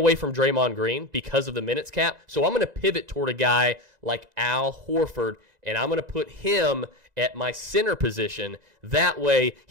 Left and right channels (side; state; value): left; late; 2.0 ms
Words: from Draymond Green because of the minutes cap. So I'm going to pivot toward a guy like Al Horford, and I'm going to put him at my center position. That way,